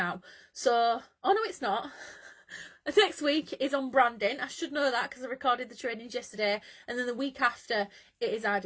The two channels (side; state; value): both; identical; correlation 1.00